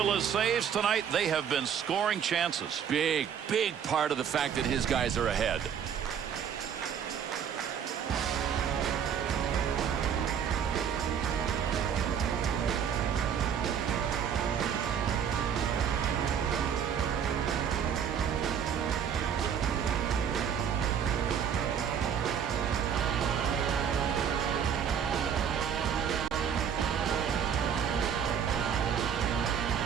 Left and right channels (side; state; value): left; quieter; 8.0 dB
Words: saves tonight, they have been scoring chances. Big part of the fact that his guys are ahead.